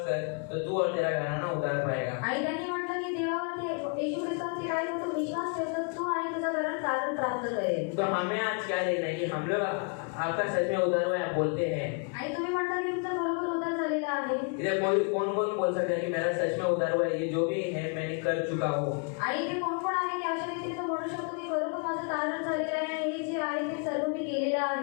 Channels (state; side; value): quieter; right; 39.7 dB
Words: कर तो तू और तेरा घराना उद्धार पाएगा। आणि त्यांनी म्हटलं की देवावरती येशू ख्रिस्तावरती काय तू विश्वास ठेव तर तू आणि तुझं घरात तारण प्राप्त करेल। तो हमें आज क्या देखना है कि हम लोग आपका सच में उद्धार हुआ है, आप बोलते हैं। आणि तुम्ही म्हणता की तुमचा बरोबर उद्धार झालेला आहे। इधर कौन बोल सकता है कि मेरा सच में उद्धार हुआ है, ये जो भी है मैंने कर चुका हूँ। आणि इथे कोण कोण आहे की अशा रीतीने तो म्हणू शकतो की खरोखर माझं तारण झालेलं आहे, हे जे आहे ते सर्व मी केलेलं